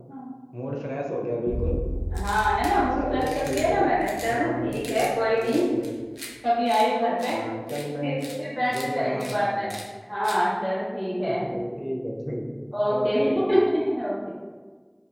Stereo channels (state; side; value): identical; both; correlation 1.00